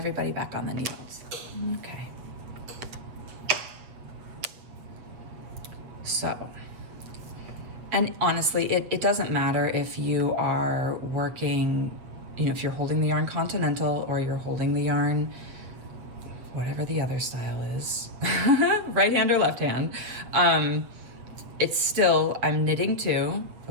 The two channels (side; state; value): left; late; 8.0 ms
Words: back on the needles. Okay. So, and honestly, it doesn't matter if you are working, if you're holding the yarn continental or you're holding the yarn, whatever the other style is, right hand or left hand. It's still, I'm knitting 2,